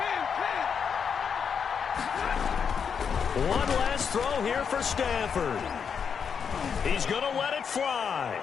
One last throw here for Stafford. He's going to let it fly.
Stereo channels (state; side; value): quieter; right; 6.7 dB